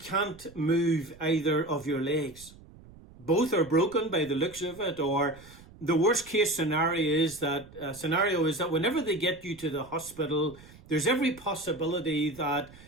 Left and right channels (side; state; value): right; noise; rumble, 21 dB below the sound